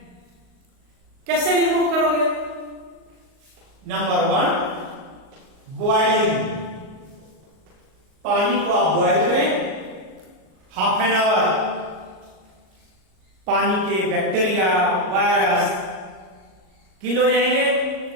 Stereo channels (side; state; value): left; late; 38 ms